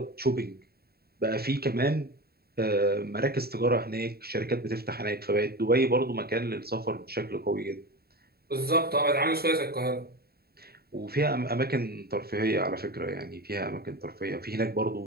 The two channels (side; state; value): left; late; 0.45 ms